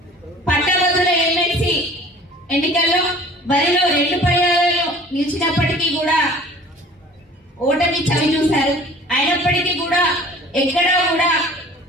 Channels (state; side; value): normal; both; correlation 0.47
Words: పట్టభద్రుల ఎమ్మెల్సీ ఎన్నికల్లో బరిలో 2 పర్యాయాలు నిలిచినప్పటికీ కూడా ఓటమి చవి చూశారు. అయినప్పటికీ కూడా ఎక్కడా కూడా